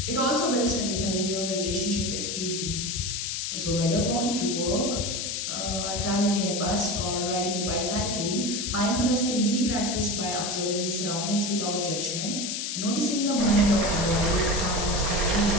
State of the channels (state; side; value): noise; left; hiss, 2 dB below the sound